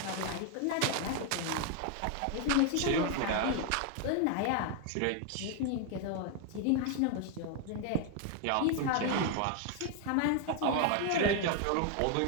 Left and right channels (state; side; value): different; both; correlation 0.00